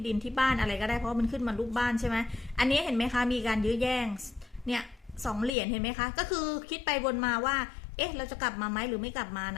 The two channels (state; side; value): drops out; right; at 5.5 s